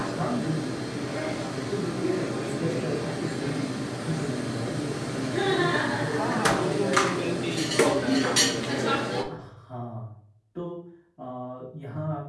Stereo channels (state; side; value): identical; both; correlation 1.00